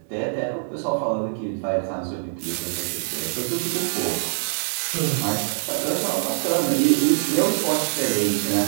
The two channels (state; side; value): silent; left; digital silence